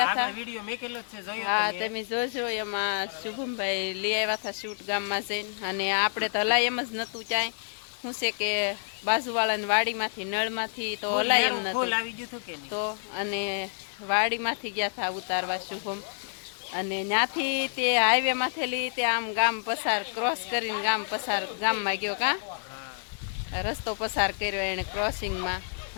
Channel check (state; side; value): silent; right; digital silence